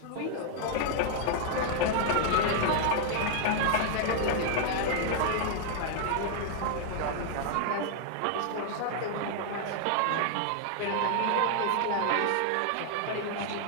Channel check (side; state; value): both; different; correlation 0.00